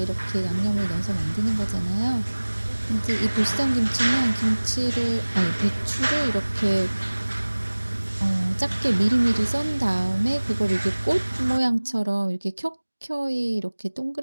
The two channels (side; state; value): both; inverted; correlation -1.00